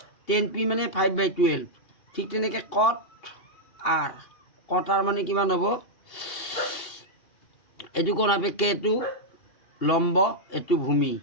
10 পি মানে 5/12, ঠিক তেনেকৈ কট আৰ মানে কিমান হ'ব, এইটো কোণ সাপেক্ষে এইটো লম্ব, এইটো ভূমি,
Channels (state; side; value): late; right; 2.8 ms